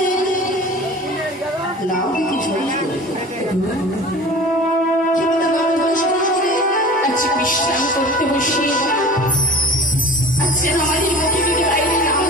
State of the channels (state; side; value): normal; both; correlation 0.40